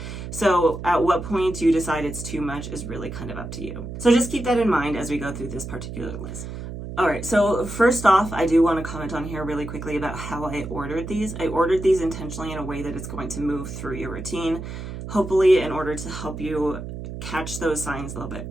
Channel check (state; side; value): noise; right; hum, 8 dB below the sound